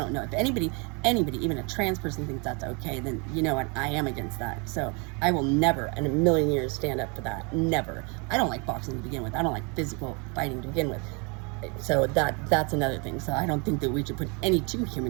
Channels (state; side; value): quieter; left; 32.3 dB